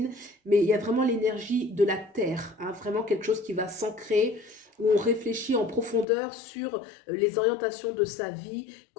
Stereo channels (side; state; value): right; drops out; at 6.1 s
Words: mais il y a vraiment l'énergie de la terre, hein, vraiment quelque chose qui va s'ancrer, où on réfléchit en profondeur sur les orientations de sa vie,